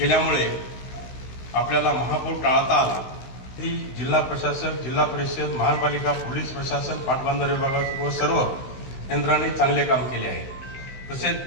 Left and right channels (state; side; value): late; right; 16 ms